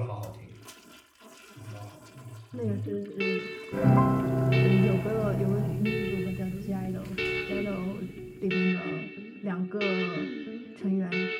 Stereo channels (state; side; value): identical; both; correlation 1.00